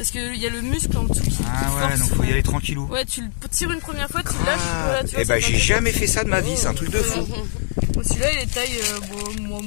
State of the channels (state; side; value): silent; right; digital silence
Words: qu'il y a le muscle en dessous qui ouais donc faut y aller tranquillou. Ouais tu le tires une première fois, tu le lâches. Voilà, tu vois, et bah j'ai jamais fait ça de ma vie, c'est un truc de fou. Bon, celui-là il est taille